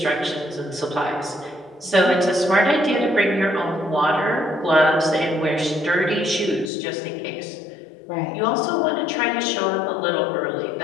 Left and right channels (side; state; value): right; drops out; at 6.7 s